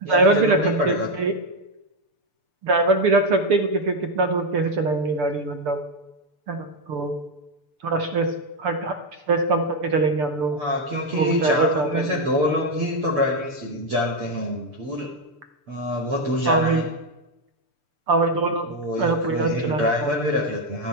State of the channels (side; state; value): left; late; 6.8 ms